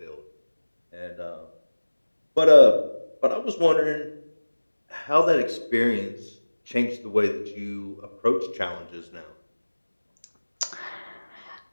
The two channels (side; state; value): both; inverted; correlation -1.00